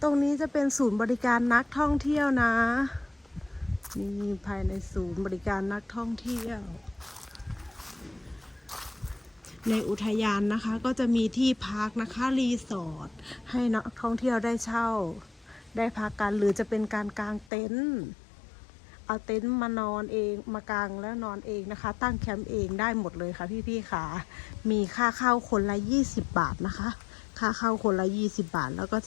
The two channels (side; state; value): right; drops out; at 17.5 s